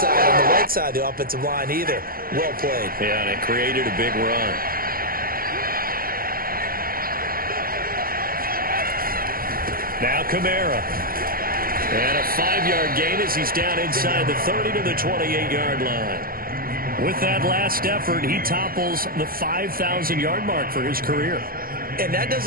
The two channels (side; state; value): left; late; 0.42 ms